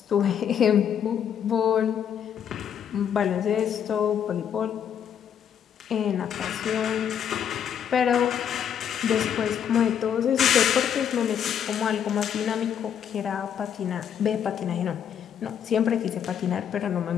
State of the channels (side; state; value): right; quieter; 8.7 dB